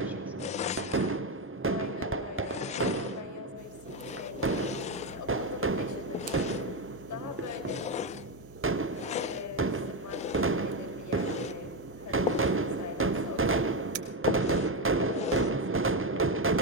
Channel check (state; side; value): normal; both; correlation 0.10